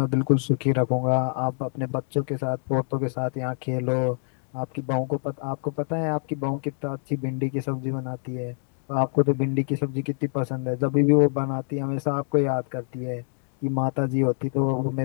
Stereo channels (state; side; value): silent; right; 61 dB below the other